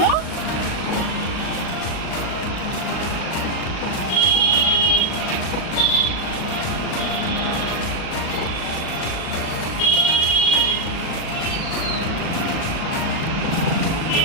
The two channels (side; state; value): right; late; 38 ms